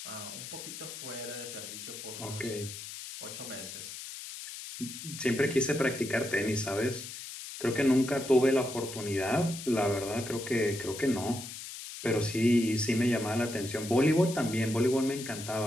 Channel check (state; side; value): noise; left; hiss, 10 dB below the sound